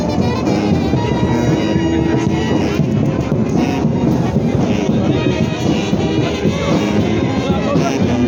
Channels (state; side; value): identical; both; correlation 1.00